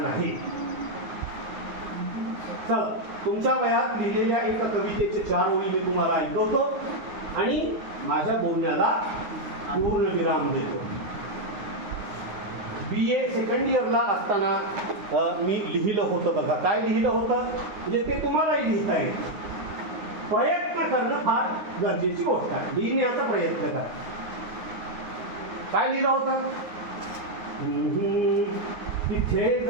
चला, तुमच्या वयात लिहिलेल्या एका कवितेचे 4 ओळी मी तुम्हाला ऐकवतो आणि माझ्या बोलण्याला पूर्ण विराम देतो. BA सेकंड इयरला असताना मी लिहिलं होतं बघा. काय लिहिलं होतं म्हणजे ते तुम्हालाही लिहिता येईल. प्रयत्न करणं फार गरजेची गोष्ट आहे. लिहिण्याचा प्रयत्न करा. काय लिहिलं होतं? तिथे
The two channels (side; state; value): left; late; 9.6 ms